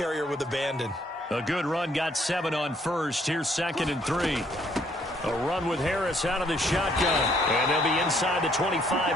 with abandon. A good run got 7 on 1st. Here's 2nd and 3. A run with Harris out of the shotgun. And they'll be inside the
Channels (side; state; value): both; normal; correlation 0.66